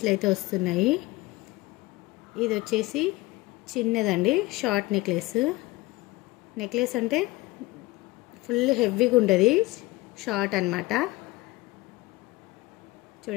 అయితే వస్తున్నాయి. ఇది వచ్చేసి చిన్నదండి, షార్ట్ నెక్లెస్ అంటే ఫుల్ హెవీగా ఉంటుంది, షార్ట్ అన్నమాట.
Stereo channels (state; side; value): quieter; right; 20.5 dB